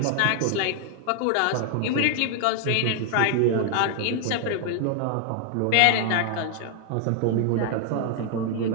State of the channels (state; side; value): different; both; correlation 0.00